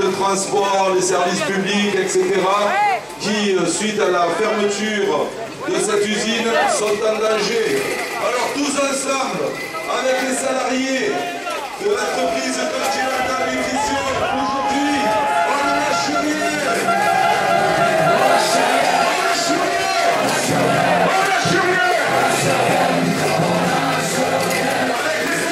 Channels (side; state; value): both; identical; correlation 1.00